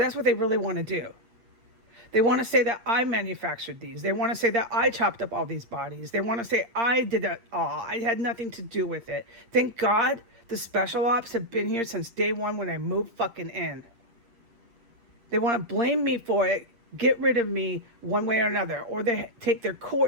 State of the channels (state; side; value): late; left; 8.6 ms